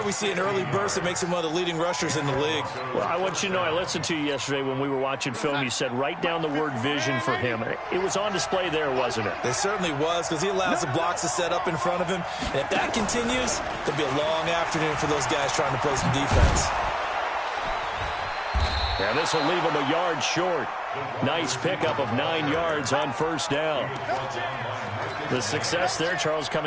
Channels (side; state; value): both; identical; correlation 1.00